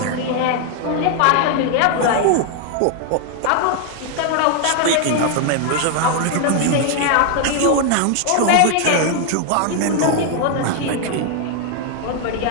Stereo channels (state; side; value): different; both; correlation 0.00